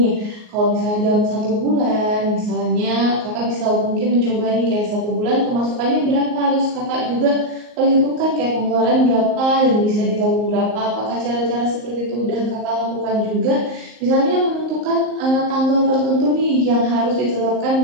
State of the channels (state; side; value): late; left; 38 ms